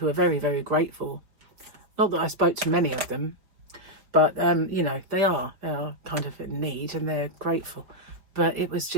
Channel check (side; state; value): left; late; 4.9 ms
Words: are very, very grateful. Not that I spoke to many of them, but you know, they are kind of in need and they're grateful. But it was